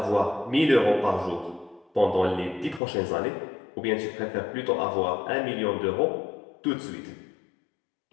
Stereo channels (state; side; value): drops out; right; at 2.8 s